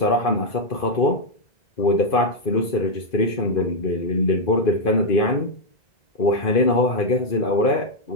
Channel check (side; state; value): right; late; 2.5 ms